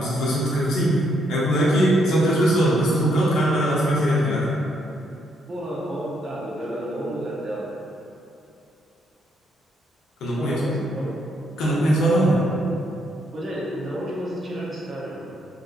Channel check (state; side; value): normal; both; correlation 0.74